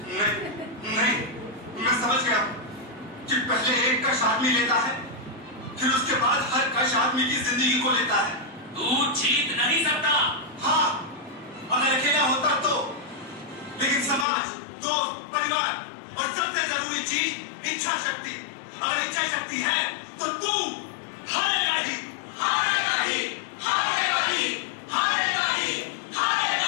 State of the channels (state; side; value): drops out; right; at 14.2 s